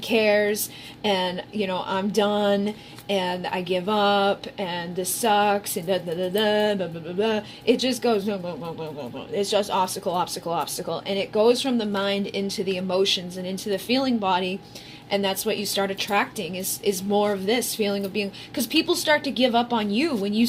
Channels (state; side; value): identical; both; correlation 1.00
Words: and, I'm done and I give up and this sucks and blah, blah, blah, blah, it just goes, blah, blah, blah, blah, blah. It's just obstacle, obstacle, obstacle. And it goes from the mind into the emotions and into the feeling body. And that's what you start attracting is more of this feeling of being, because people start to give up on you when you